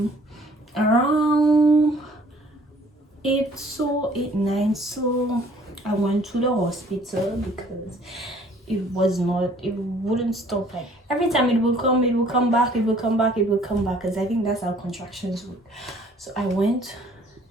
Around 8, so 8, 9, so I went to the hospital because it wouldn't stop. Like every time it will come back, it will come back, because I think that's how contractions work. So I went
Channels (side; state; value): both; normal; correlation 0.57